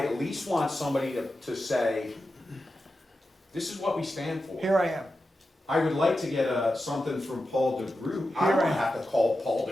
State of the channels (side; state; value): both; normal; correlation 0.91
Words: least want somebody to say, this is what we stand for. Here I am. I would like to get something from Paul DeGroot. I Here don't I am. have to call Paul